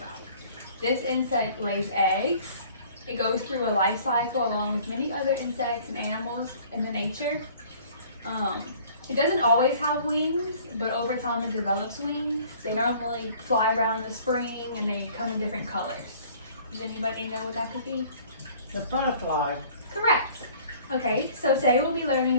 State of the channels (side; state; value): both; inverted; correlation -0.52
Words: This insect lays eggs. It goes through a life cycle along with many other insects and animals in the nature. It doesn't always have wings, but over time it develops wings. They normally fly around in the spring and they come in different colors. Does anybody know what that could be? The butterfly. Correct. Okay, so today we'll be learning